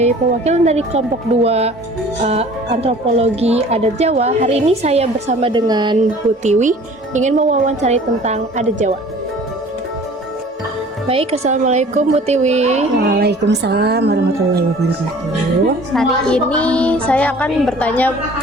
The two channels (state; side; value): normal; both; correlation 0.48